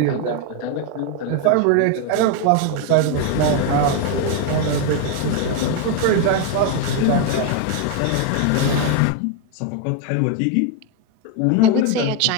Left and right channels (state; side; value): different; both; correlation 0.01